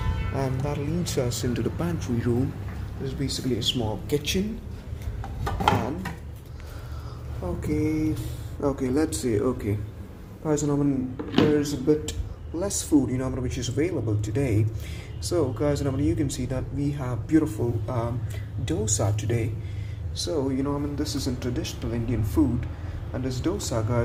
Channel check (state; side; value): identical; both; correlation 1.00